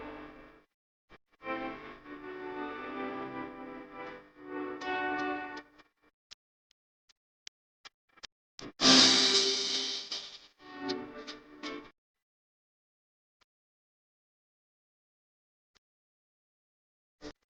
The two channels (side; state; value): both; identical; correlation 1.00